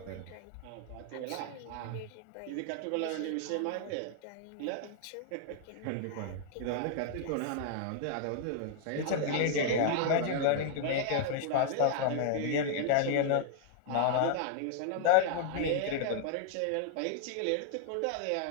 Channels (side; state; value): both; different; correlation -0.01